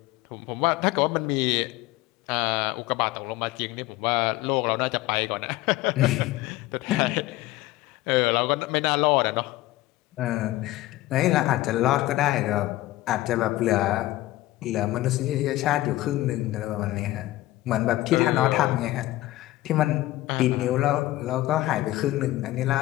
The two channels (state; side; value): quieter; right; 17.1 dB